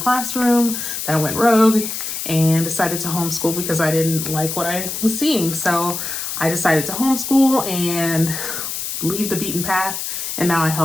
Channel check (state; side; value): noise; left; hiss, 5 dB below the sound